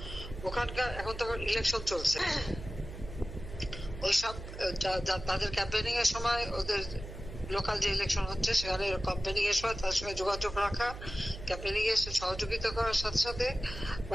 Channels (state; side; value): noise; right; hum, 11 dB below the sound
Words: ওখানকার এখন তো ইলেকশন চলছে, ওইসব তাদের ক্যাম্পেনিং এর সময়, ওদের লোকাল যে ইলেকশন হচ্ছে সেখানে ক্যাম্পেনিং এর সময় তার সঙ্গে যোগাযোগ রাখা, ক্যাম্পেনিং এর সহযোগিতা করার সাথে সাথে